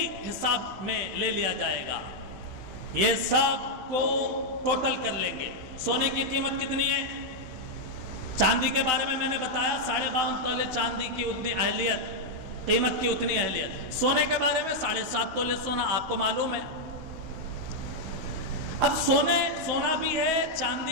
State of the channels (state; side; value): late; left; 16 ms